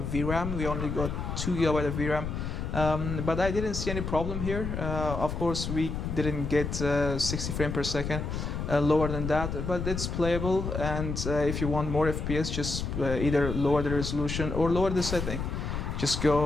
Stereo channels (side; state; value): left; noise; rumble, 4 dB below the sound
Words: VRAM. We only got 2GB of VRAM. But I didn't see any problem here. Of course, we didn't get 60 frames per second, lower than that, but it's playable. And if you want more FPS, just either lower the resolution or lower the setting. Just